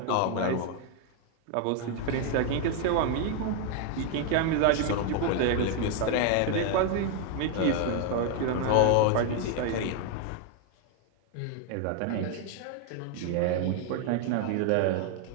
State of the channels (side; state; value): both; different; correlation 0.01